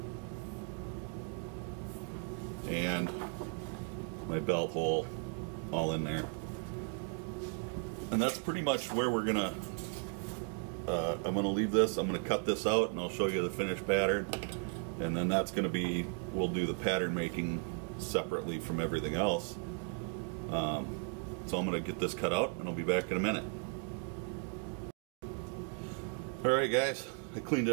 and my belt hole all in there. And that's pretty much where we're gonna, I'm gonna leave this, I'm gonna cut this out and I'll show you the finished pattern. And then that's gonna be, we'll do the pattern making separately from everything else. So I'm gonna get this cut out and I'll be back in a minute. Alright guys, I cleaned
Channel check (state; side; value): quieter; left; 36.8 dB